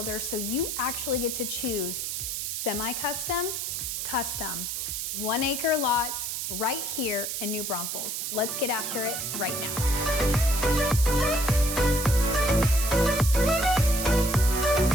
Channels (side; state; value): right; noise; hiss, 3 dB below the sound